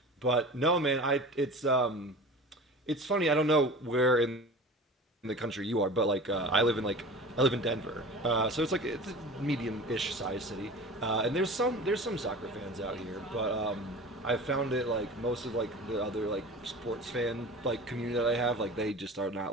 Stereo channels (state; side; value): normal; both; correlation 0.37